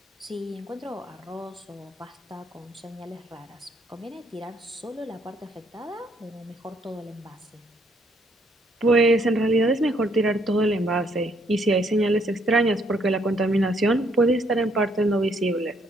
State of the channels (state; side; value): normal; both; correlation 0.68